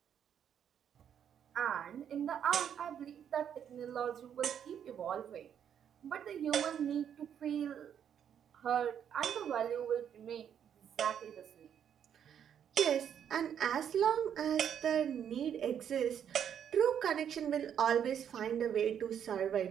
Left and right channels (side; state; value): left; quieter; 8.8 dB